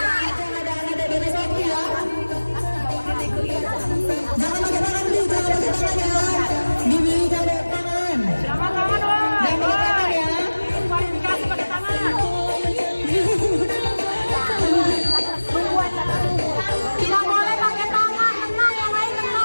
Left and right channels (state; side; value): inverted; both; correlation -1.00